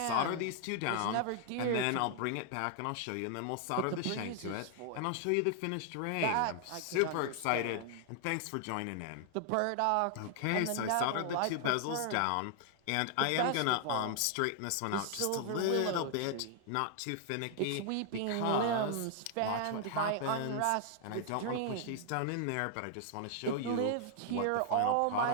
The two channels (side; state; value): both; different; correlation 0.00